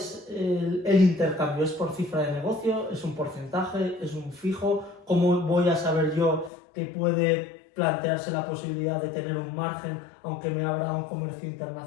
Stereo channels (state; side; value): drops out; right; at 6.5 s